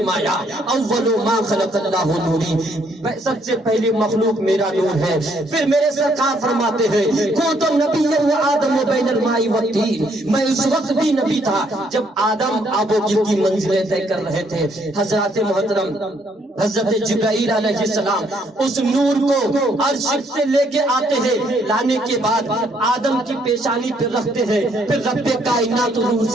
اول ما خلق اللہ نوری، سب سے پہلی مخلوق میرا نور ہے. پھر میرے سرکار فرماتے ہیں کنت نبیا و آدم بین الماء والطین، میں اس وقت بھی نبی تھا جب آدم آب و گل کی منزلیں طے کر رہے تھے. حضرات محترم حضرت جبرائیل علیہ السلام اس نور کو عرش سے لے کے آتے ہیں، لانے کے بعد آدم کی پیشانی پہ رکھتے ہیں. پھر رب کائنات روح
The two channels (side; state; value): both; normal; correlation 0.69